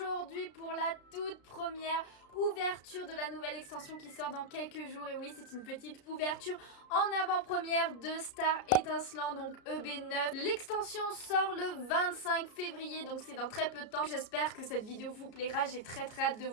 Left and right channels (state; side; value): late; right; 33 ms